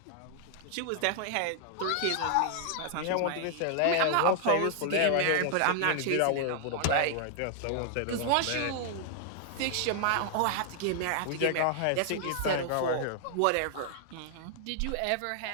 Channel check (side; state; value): both; different; correlation 0.00